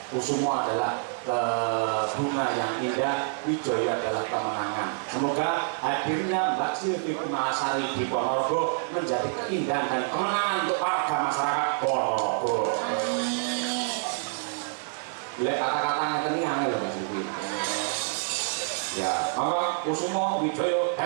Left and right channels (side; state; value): left; silent; digital silence